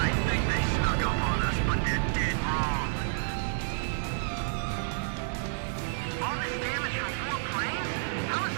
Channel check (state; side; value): silent; left; digital silence